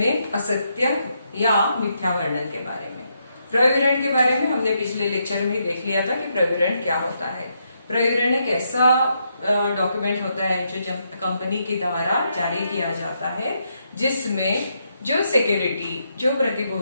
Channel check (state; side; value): inverted; both; correlation -0.79